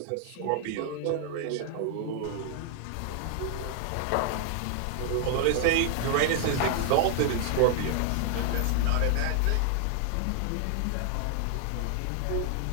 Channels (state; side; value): different; both; correlation 0.00